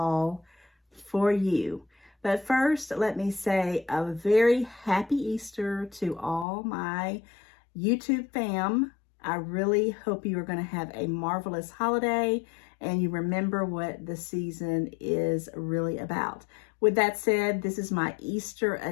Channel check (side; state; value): right; drops out; at 6.5 s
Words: for you. But first, let me say a very happy Easter to all my YouTube fam. I really hope you are going to have a marvelous holiday and you remember what the season is really about. With that said, this is my Easter